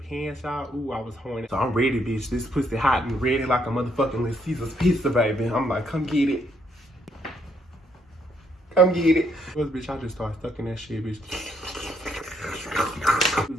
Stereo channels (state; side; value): normal; both; correlation 0.72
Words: pants, y'all. Ooh, I was horny. So I'm ready, bitch. This pussy hot and ready like a motherfucking Little Caesar's pizza, baby. I'm like, come get it. Come get it. Bitch, I just started stuck in that shit, bitch. He